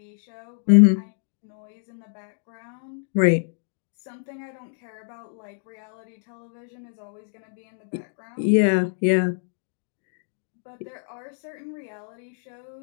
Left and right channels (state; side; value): silent; right; digital silence